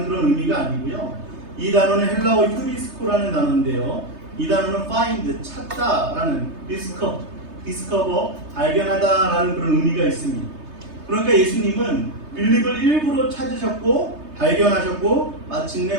그런 의미가 아니고요. 이 단어는 헬라어 휴리스코라는 단어인데요. 이 단어는 find, 찾다라는 discover, 발견하다라는 그런 의미가 있습니다. 그러니까 예수님은 빌립을 일부러 찾으셨고 발견하셨고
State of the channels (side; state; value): left; late; 3.3 ms